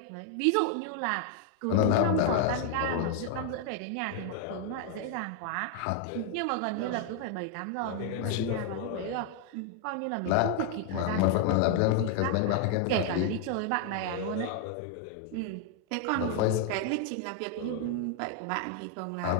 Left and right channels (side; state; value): both; different; correlation 0.00